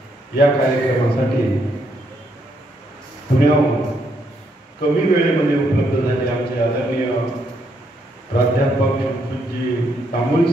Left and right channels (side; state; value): both; normal; correlation 0.75